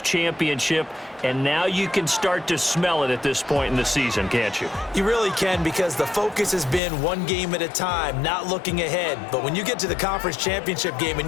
championship. And now you can start to smell it at this point in the season, can't you? You really can, because the focus has been one game at a time, not looking ahead. But when you get to the conference championship game and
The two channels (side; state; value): right; drops out; at 6.8 s